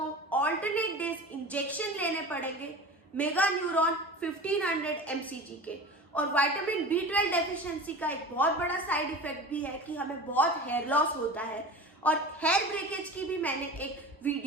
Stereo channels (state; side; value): normal; both; correlation 0.34